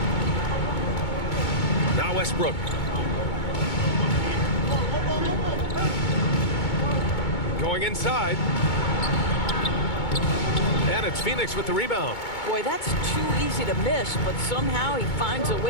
Now Westbrook. Going inside. And it's Phoenix with the rebound. Boy, that's too easy to miss, but somehow he finds a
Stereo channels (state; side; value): late; right; 2.2 ms